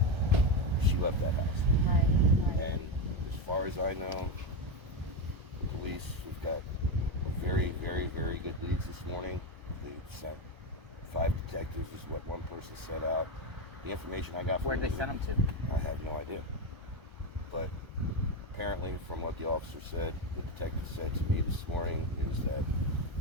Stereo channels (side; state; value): left; late; 1.3 ms